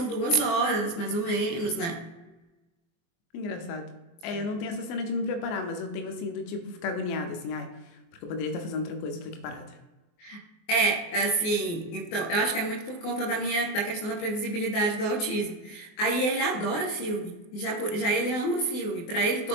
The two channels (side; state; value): right; late; 24 ms